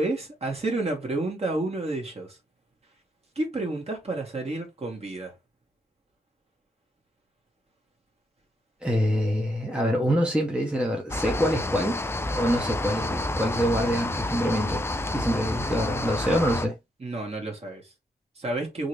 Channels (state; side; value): normal; both; correlation 0.77